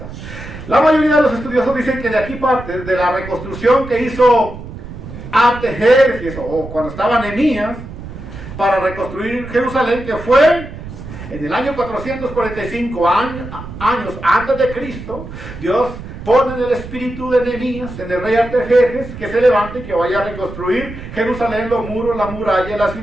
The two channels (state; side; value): noise; right; rumble, 12 dB below the sound